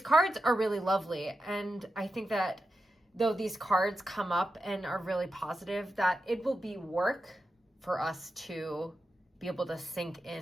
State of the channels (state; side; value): normal; both; correlation 0.90